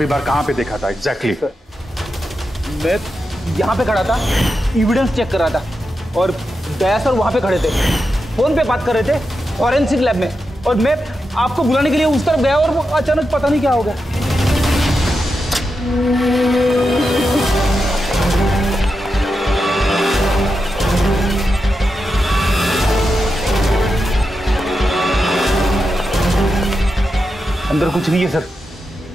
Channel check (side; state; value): both; normal; correlation 0.88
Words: बार कहाँ पे देखा था एग्जैक्टली? मैं यहाँ पे खड़ा था, एविडेंस चेक कर रहा था, और दया सर वहाँ पे खड़े थे, फोन पे बात कर रहे थे फॉरेंसिक लैब में, और मैं आपको बुलाने के लिए उस तरफ गया और वो अचानक पता नहीं क्या हो गया। अंदर कुछ नहीं है सर।